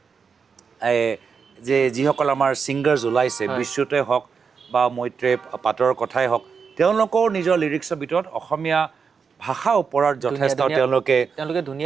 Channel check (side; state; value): left; quieter; 5.8 dB